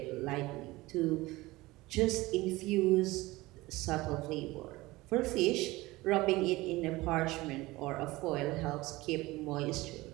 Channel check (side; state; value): left; quieter; 20.1 dB